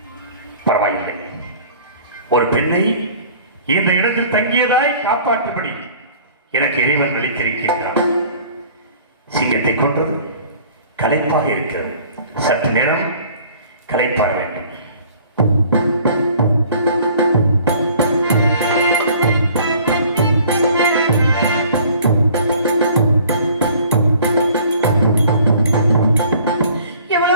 பரவாயில்லை, ஒரு பெண்ணை இந்த இடத்தில் தங்கியதாய் காப்பாற்றும்படி எனக்கு இறைவன் அளித்திருக்கின்றான். சிங்கத்தை கொன்றது களைப்பாக இருக்கிறது. சற்று நேரம் களைப்பாற வேண்டும்.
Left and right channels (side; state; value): both; inverted; correlation -0.51